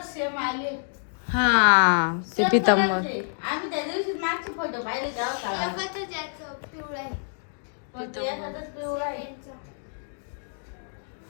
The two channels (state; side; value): silent; right; digital silence